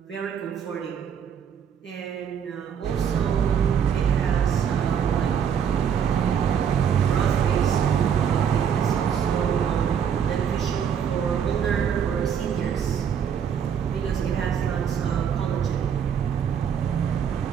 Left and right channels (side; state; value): left; quieter; 7.9 dB